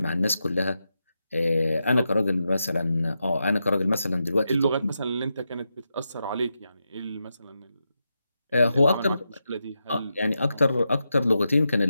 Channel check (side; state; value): both; inverted; correlation -0.87